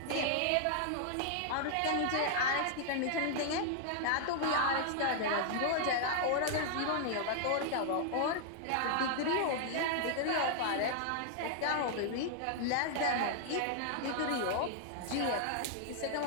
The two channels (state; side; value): different; both; correlation 0.00